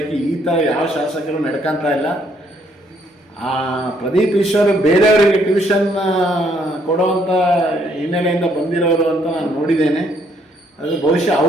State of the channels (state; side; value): normal; both; correlation 0.69